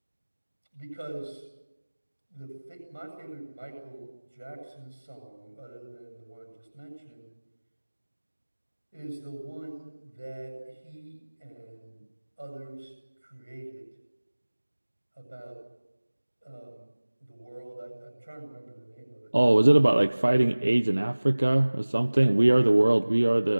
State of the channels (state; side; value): inverted; both; correlation -1.00